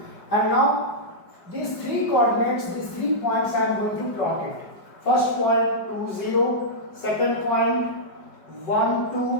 And now these three coordinates, these 3 points I am going to plot it. First point 2, 0, second point 1,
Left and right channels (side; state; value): right; late; 5.1 ms